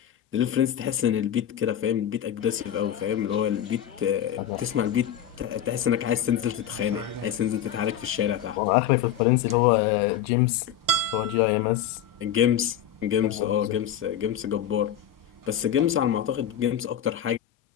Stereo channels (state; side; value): quieter; right; 9.8 dB